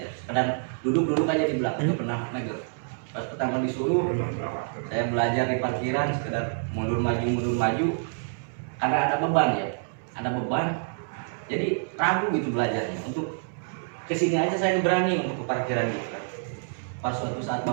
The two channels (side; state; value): left; silent; 60 dB below the other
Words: Kadang duduk aja di belakang nggak pernah megang. Pas pertama disuruh saya belajar di parkiran sekedar mundur maju karena ada beban ya, jadi ragu gitu belajarnya. Untuk kesini aja saya berani untuk ke parkiran gitu kan. Pas suatu saat